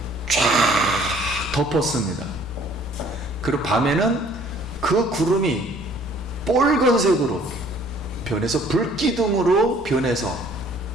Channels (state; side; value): normal; both; correlation 0.57